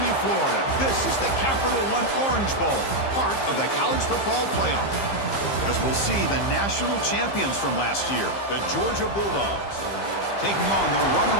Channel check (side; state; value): right; late; 15 ms